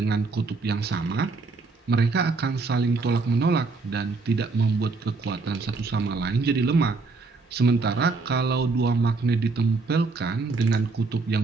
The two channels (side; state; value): left; quieter; 4.0 dB